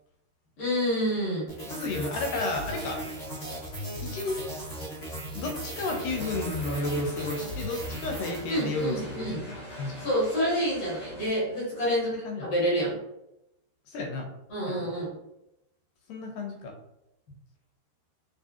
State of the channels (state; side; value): late; right; 13 ms